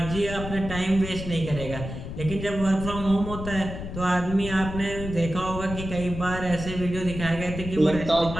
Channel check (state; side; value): noise; left; rumble, 8 dB below the sound